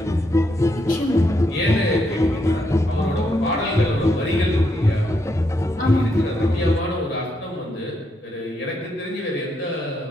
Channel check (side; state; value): both; normal; correlation 0.79